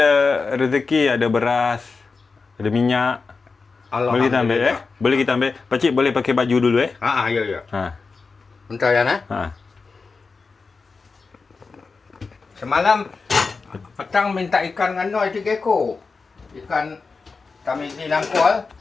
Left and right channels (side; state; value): right; quieter; 4.5 dB